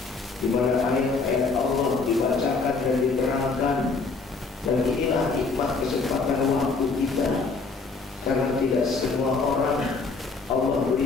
di mana ayat-ayat Allah dibacakan dan diterangkan. Dan inilah nikmat kesempatan waktu kita, karena tidak semua orang Allah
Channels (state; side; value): quieter; right; 4.2 dB